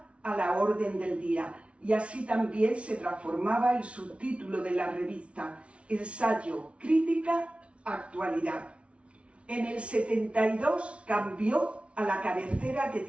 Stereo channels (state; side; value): late; left; 0.061 ms